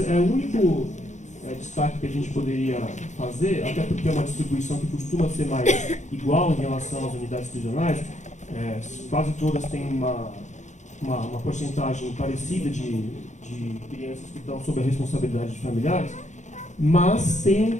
único destaque que a gente poderia fazer, até porque é uma distribuição que costuma ser mais igual em relação às unidades prisionais, quase todas têm uma porcentagem parecida de crianças que estão sob a responsabilidade de familiares, mas tem um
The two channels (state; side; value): late; right; 0.35 ms